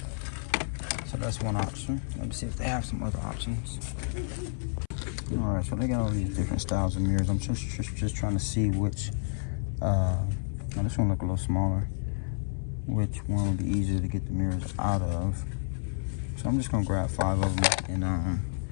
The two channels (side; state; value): right; silent; 58 dB below the other